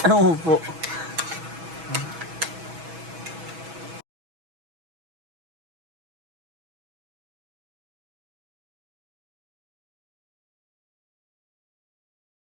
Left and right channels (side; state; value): left; late; 6.1 ms